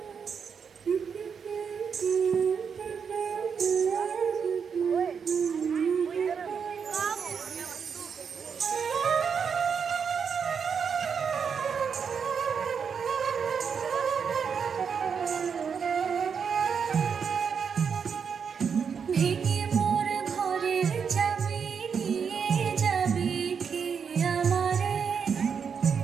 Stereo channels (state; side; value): quieter; left; 6.6 dB